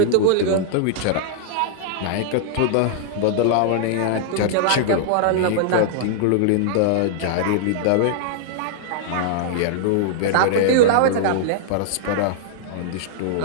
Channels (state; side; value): different; both; correlation -0.01